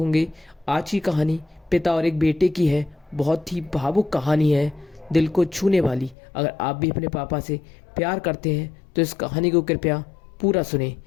आज की कहानी पिता और एक बेटे की है। बहुत ही भावुक कहानी है, दिल को छूने वाली। अगर आप भी अपने पापा से प्यार करते हैं तो इस कहानी को कृपया पूरा सुने।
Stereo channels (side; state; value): right; drops out; at 6.2 s